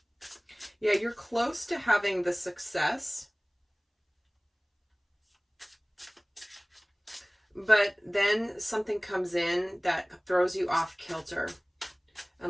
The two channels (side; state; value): both; identical; correlation 1.00